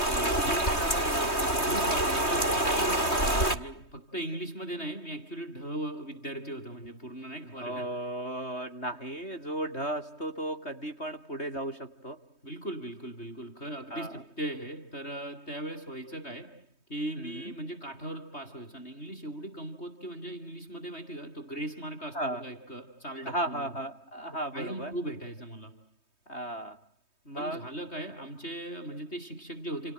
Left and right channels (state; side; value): late; right; 3.2 ms